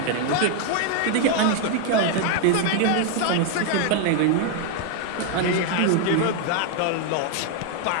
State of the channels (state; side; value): different; both; correlation 0.01